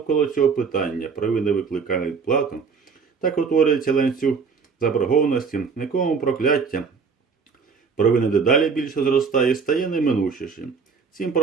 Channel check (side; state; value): left; quieter; 5.4 dB